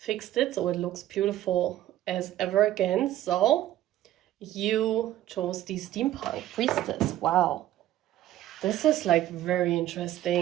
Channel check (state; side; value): quieter; left; 13.5 dB